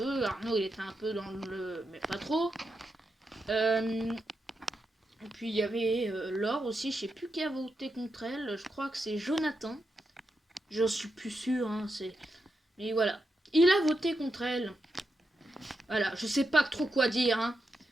Arnaud, il était un peu dans le... Mais pas trop. Et puis, il y avait Laure aussi. Je sais plus qui a voté contre elle. Je crois que c'est Jonathan. Je suis plus sûre, hein, mais voilà. Il a voté contre elle. Voilà, je sais pas trop quoi dire, hein.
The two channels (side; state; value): both; normal; correlation 0.86